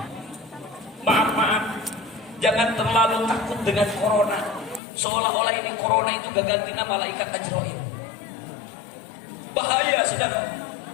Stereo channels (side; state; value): right; drops out; at 4.8 s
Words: Maaf, jangan terlalu takut dengan corona, seolah-olah ini corona itu gantinya malaikat Ajrail. Bahaya saudara,